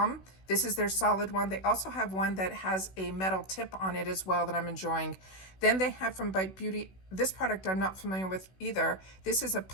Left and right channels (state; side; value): late; right; 16 ms